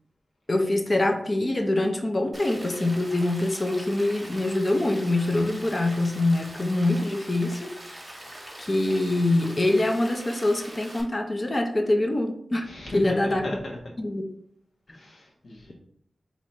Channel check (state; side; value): normal; both; correlation 0.96